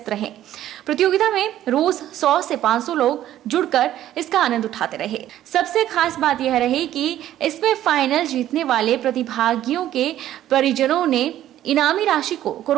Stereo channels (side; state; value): left; quieter; 12.6 dB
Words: रहें। प्रतियोगिता में रोज 100 से 500 लोग जुड़कर इसका आनंद उठाते रहे। सबसे खास बात यह रही कि इसमें फाइनल जीतने वाले प्रतिभागियों के परिजनों ने इनामी राशि को